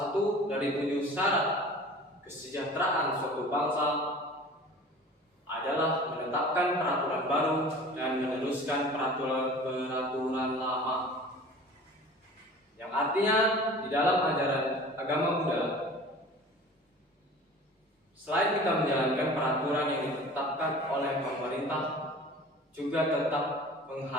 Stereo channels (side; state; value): both; normal; correlation 0.42